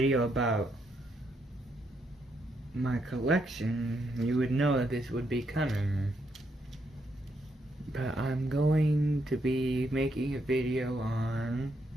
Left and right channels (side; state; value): both; normal; correlation 0.77